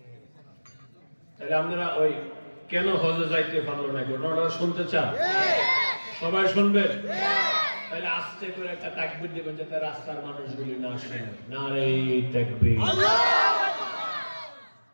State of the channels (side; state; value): both; inverted; correlation -1.00